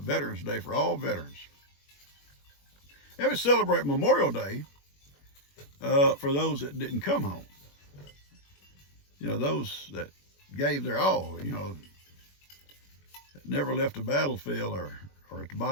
Day for all veterans. And we celebrate Memorial Day for those that didn't come home. Those that gave their all, never left the battlefield or at the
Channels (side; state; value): right; late; 21 ms